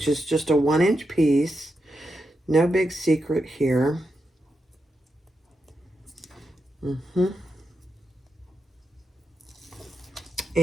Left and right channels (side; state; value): both; normal; correlation 0.86